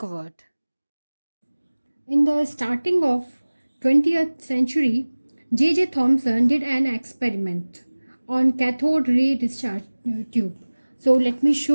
In the starting of 20th century, J.J. Thomson did an experiment on cathode ray discharge tube. So let me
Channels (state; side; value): inverted; both; correlation -1.00